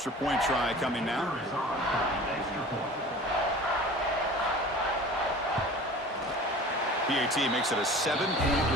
point try coming now. PAT makes it a 7-point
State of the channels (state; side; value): normal; both; correlation 0.41